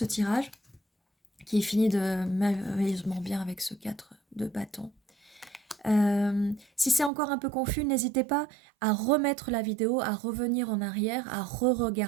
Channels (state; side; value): drops out; left; at 7.1 s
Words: tirage, qui est fini de merveilleusement bien avec ce 4 de bâton. Si c'est encore un peu confus, n'hésitez pas à remettre la vidéo, à revenir en arrière, à